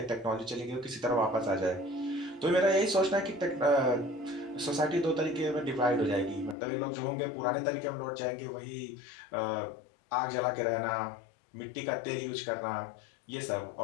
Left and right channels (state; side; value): drops out; right; at 6.6 s